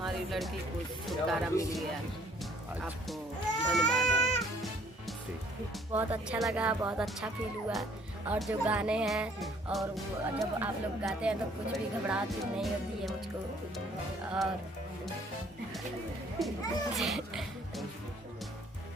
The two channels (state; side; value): normal; both; correlation 0.60